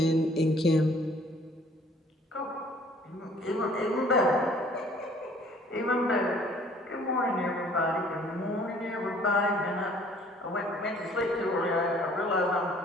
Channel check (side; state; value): both; normal; correlation 0.56